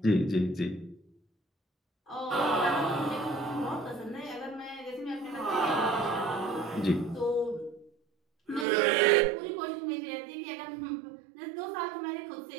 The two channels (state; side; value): drops out; left; at 8.7 s